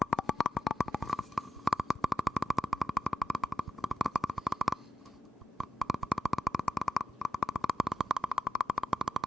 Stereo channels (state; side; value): normal; both; correlation 0.87